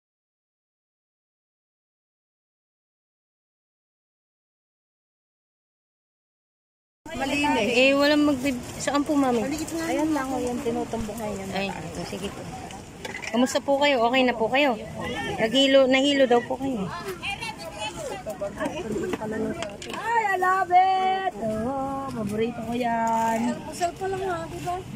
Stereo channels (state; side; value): identical; both; correlation 1.00